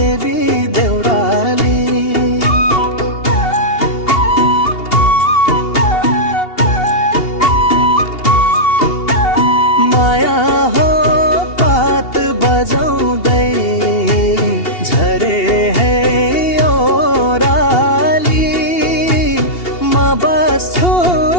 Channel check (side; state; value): right; late; 2.8 ms